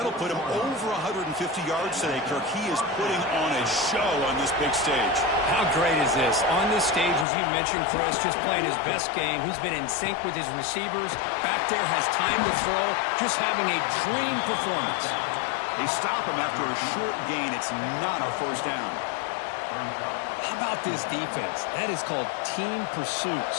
put him over 150 yards today, Kirk. He is putting on a show on this big stage. How great is this? On this stage, as you mentioned, Chris, just playing his best game. He's been in sync with his receivers. Back there, has time to throw. Just having a dream performance. They stop him after a short gain. It's not a 1st down. How about this defense? That is called team pursuit.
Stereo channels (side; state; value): right; drops out; at 7.2 s